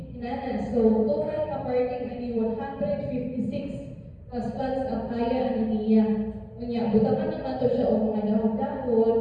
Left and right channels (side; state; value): both; identical; correlation 1.00